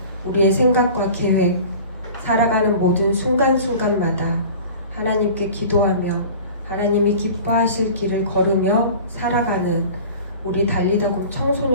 우리의 생각과 계획, 살아가는 모든 순간순간마다 하나님께 기도하며 하나님이 기뻐하실 길을 걸으며 살아가는 우리 달리다곰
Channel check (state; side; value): inverted; both; correlation -0.41